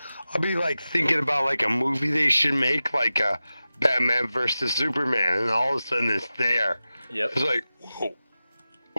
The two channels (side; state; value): both; inverted; correlation -0.94